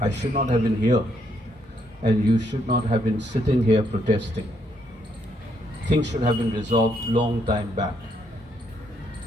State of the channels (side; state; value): both; normal; correlation 0.74